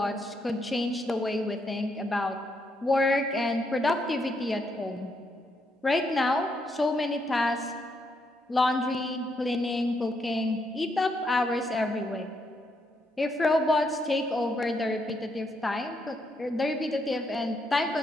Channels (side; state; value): both; normal; correlation 0.77